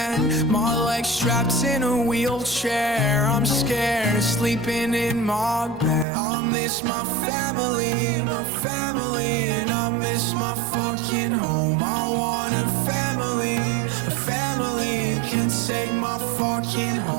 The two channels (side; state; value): left; drops out; at 6.1 s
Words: My legs strapped in a wheelchair, I'm scared of sleeping in my bed. I miss my family, and I miss my fucking home. I want a family can take my fucking